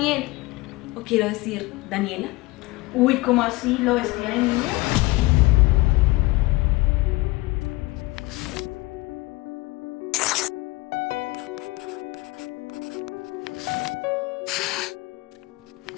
O quiero decir, Daniela. Uy, ¿cómo así? ¿Lo vestía de niña?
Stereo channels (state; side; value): quieter; right; 21.2 dB